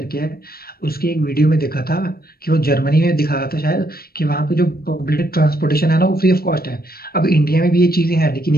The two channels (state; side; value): late; right; 0.44 ms